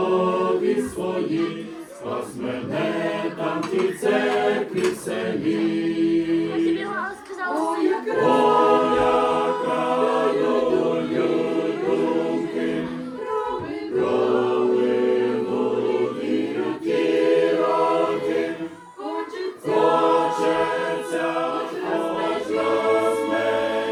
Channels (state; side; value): identical; both; correlation 1.00